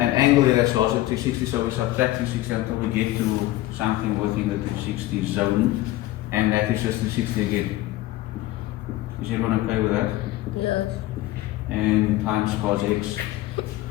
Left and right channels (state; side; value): quieter; right; 16.6 dB